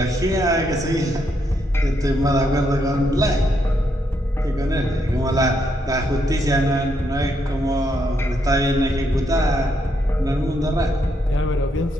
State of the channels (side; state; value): both; normal; correlation 0.77